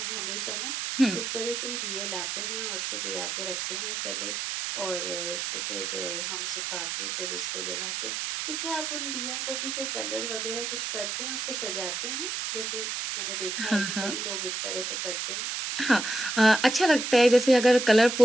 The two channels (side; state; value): right; noise; hiss, 2 dB below the sound